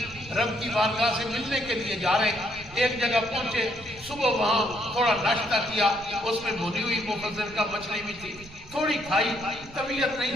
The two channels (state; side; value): noise; right; rumble, 18 dB below the sound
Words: رب کی بارگاہ سے ملنے کے لیے جا رہے. ایک جگہ پہنچے، صبح وہاں تھوڑا ناشتہ کیا، اس میں بھنی ہوئی مفضل کا مچھلی بھی تھی، تھوڑی کھائی، طبیعت